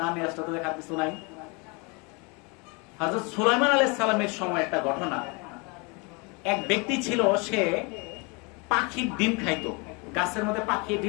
না নিয়ে আসলে তো দেখার কিছু নাই। হযরত সুলাইমান আলাইহিস সালামের সময় একটা ঘটনা। এক ব্যক্তি ছিল, সে পাখির ডিম খাইতো, গাছের মধ্যে পাখি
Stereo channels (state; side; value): quieter; right; 30.3 dB